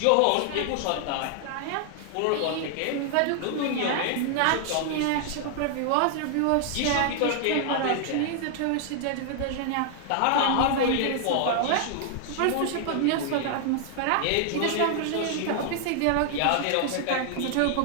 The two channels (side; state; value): both; different; correlation 0.00